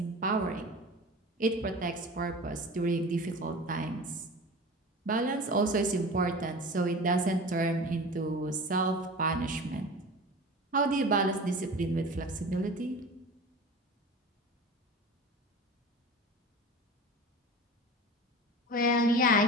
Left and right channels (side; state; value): both; normal; correlation 0.35